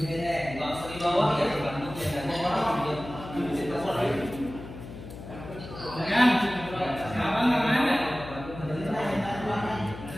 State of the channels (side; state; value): left; noise; hum, 13 dB below the sound